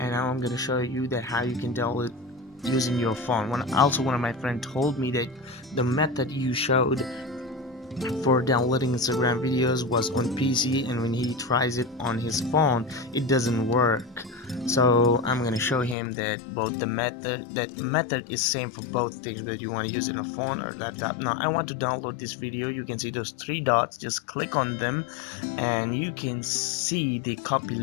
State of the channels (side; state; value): right; drops out; at 16.0 s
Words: now I'm gonna show you that how you can download using your phone. One of my friends told me that the method you showed for downloading Instagram videos was on PC, and when he tries it on his phone it doesn't work. So I'm gonna show him that both the method is same for both things, whether you want to use it on a phone or laptop. Now I want to download this video. You can see those three dots, just click on them and you can see the copy